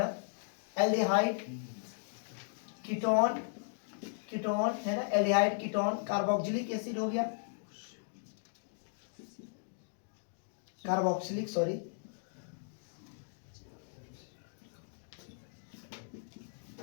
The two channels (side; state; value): right; silent; digital silence